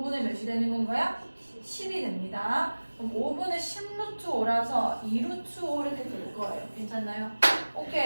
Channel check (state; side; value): inverted; both; correlation -1.00